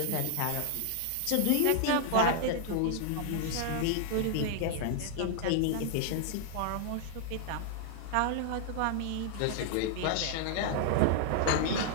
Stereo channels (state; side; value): different; both; correlation 0.00